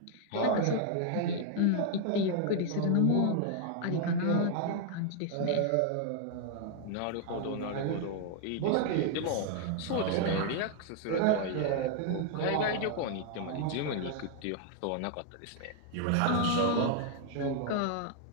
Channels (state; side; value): different; both; correlation 0.00